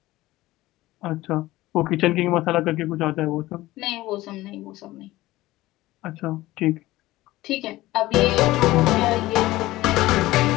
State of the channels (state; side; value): quieter; right; 17.6 dB